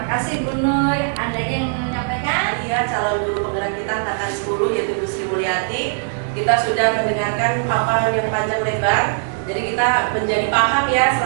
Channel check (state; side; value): silent; left; digital silence